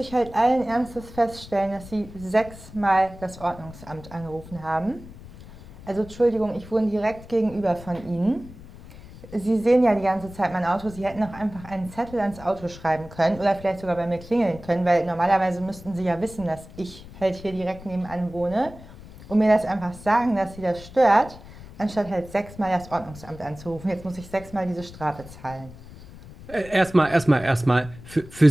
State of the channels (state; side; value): noise; left; rumble, 17 dB below the sound